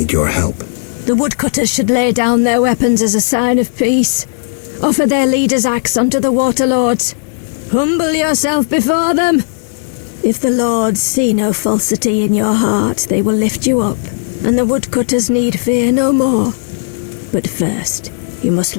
your help. The woodcutters should lay down their weapons as a sign of peace. Offer their leader's axe unto the Waterlords. Humble yourself before them. If the lords see no falsity in your heart, they will lift you up, and the woodcutters need fear no more. But first, you must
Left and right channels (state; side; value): silent; right; digital silence